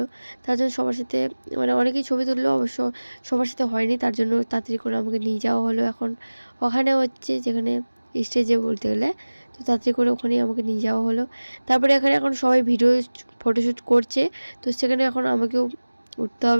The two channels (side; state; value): both; inverted; correlation -1.00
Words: তার জন্য সবার সাথে মানে অনেকেই ছবি তুললো, অবশ্য সবার সাথে হয়নি, তার জন্য তাড়াতাড়ি করে আমাকে নিয়ে যাওয়া হলো এখন ওখানে হচ্ছে যেখানে স্টেজে বলতে গেলে। তো তাড়াতাড়ি করে ওখানেই আমাকে নিয়ে যাওয়া হলো। তারপরে এখানে এখন সবাই ভিডিও ফটোশ্যুট করছে, তো সেখানে এখন আমাকেও উঠতে